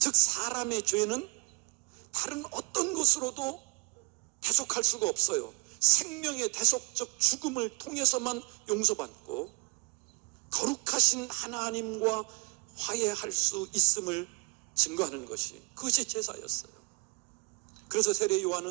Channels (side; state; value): left; quieter; 30.6 dB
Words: 사람의 죄는 다른 어떤 것으로도 대속할 수가 없어요. 생명의 대속적 죽음을 통해서만 용서받고 거룩하신 하나님과 화해할 수 있음을 증거하는 것이, 그것이 제사였어요. 그래서 세례